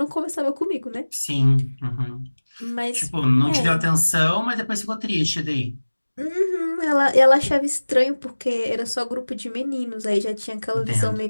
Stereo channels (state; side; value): inverted; both; correlation -1.00